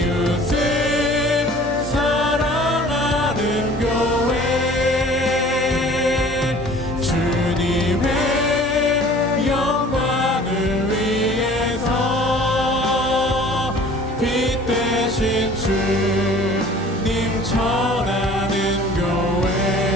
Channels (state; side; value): normal; both; correlation 0.48